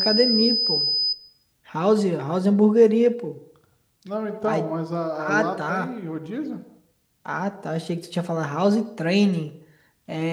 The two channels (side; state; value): both; identical; correlation 1.00